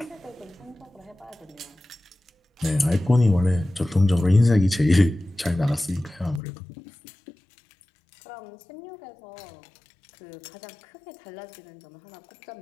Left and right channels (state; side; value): drops out; right; at 6.4 s